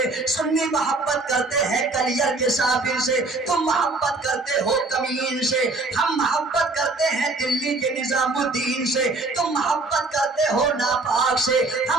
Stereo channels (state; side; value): quieter; left; 3.3 dB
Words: سنی محبت کرتے ہیں کلیئر کے صابر سے۔ تم محبت کرتے ہو کمین سے، ہم محبت کرتے ہیں دلی کے نظام الدین سے۔ تم محبت کرتے ہو ناپاک سے،